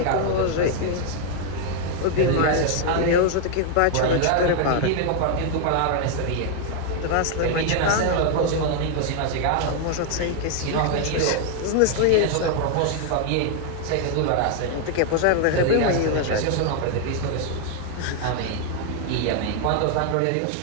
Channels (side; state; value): both; different; correlation 0.00